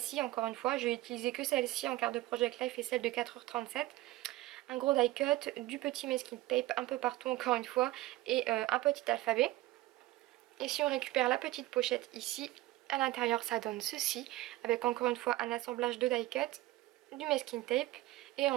encore une fois. Je vais utiliser que celle-ci en carte de Project Live et celle de 4h37. Un gros die cut, du petit masking tape un peu partout encore une fois, et un petit alphabet. Et si on récupère la petite pochette ici, à l'intérieur ça donne ceci, avec encore une fois un assemblage de die cut. du masking tape et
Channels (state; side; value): quieter; left; 17.7 dB